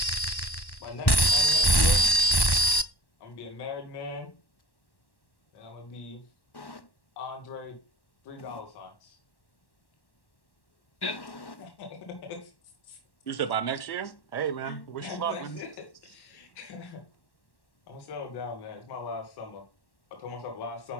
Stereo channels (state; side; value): late; right; 1.1 ms